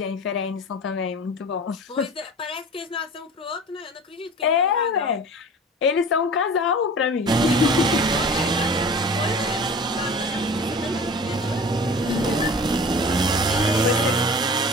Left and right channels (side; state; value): both; normal; correlation 0.39